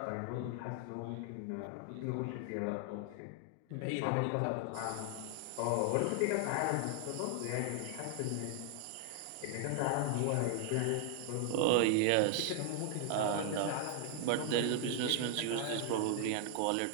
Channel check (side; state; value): both; different; correlation 0.00